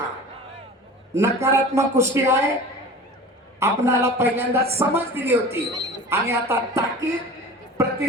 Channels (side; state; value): both; normal; correlation 0.38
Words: नकारात्मक कुस्ती आहे. आपणाला पहिल्यांदा समज दिली होती आणि आता ताकीद,